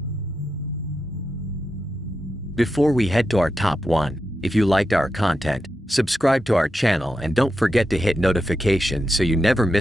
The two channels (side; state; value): both; normal; correlation 0.88